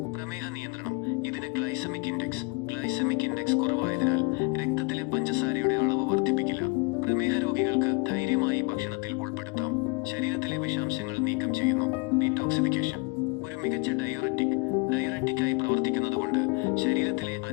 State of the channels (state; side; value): quieter; right; 28.8 dB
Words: പ്രമേഹ നിയന്ത്രണം: ഇതിന് ഗ്ലൈസമിക് ഇൻഡെക്സ് കുറവായതിനാൽ രക്തത്തിലെ പഞ്ചസാരയുടെ അളവ് വർദ്ധിപ്പിക്കില്ല. പ്രമേഹ രോഗികൾക്ക് ധൈര്യമായി ഭക്ഷണത്തിൽ ഉൾപ്പെടുത്താം. ശരീരത്തിലെ വിഷാംശങ്ങൾ നീക്കം ചെയ്യുന്നു. ഡീടോക്സിഫിക്കേഷൻ: ഒരു മികച്ച ഡയററ്റിക്കായി പ്രവർത്തിക്കുന്നതുകൊണ്ട് ശരീരത്തിലെ